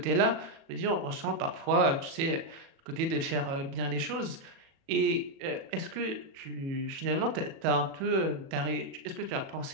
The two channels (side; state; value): left; late; 37 ms